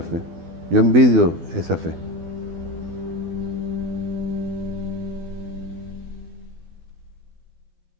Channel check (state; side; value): late; left; 12 ms